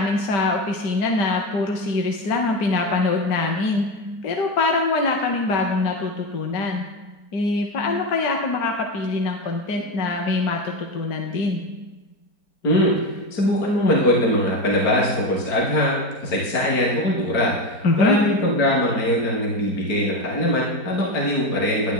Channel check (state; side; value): late; right; 4.4 ms